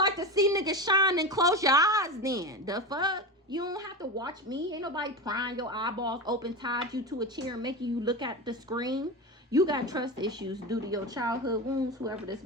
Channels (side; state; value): both; normal; correlation 0.21